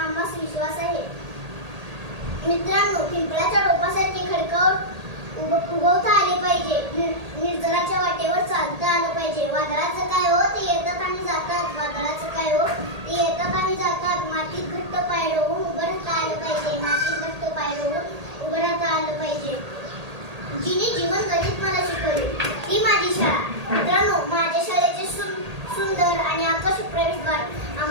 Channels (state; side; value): late; left; 1.8 ms